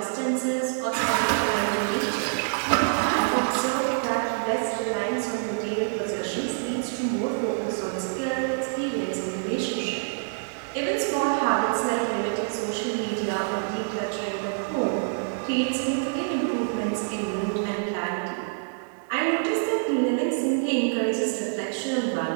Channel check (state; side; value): silent; left; digital silence